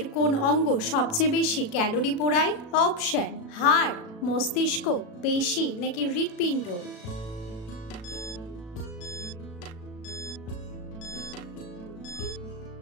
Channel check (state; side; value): late; right; 36 ms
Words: কোন অঙ্গ সবচেয়ে বেশি ক্যালোরি পোড়ায়? অপশন: হাড়, মস্তিষ্ক, পেশি নাকি হৃৎপিণ্ড?